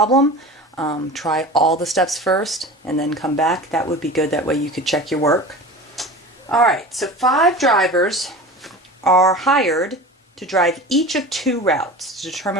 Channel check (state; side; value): normal; both; correlation 0.34